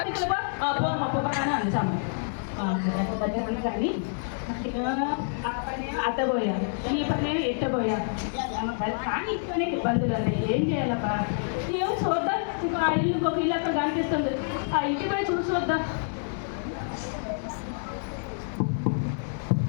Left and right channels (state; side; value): silent; right; digital silence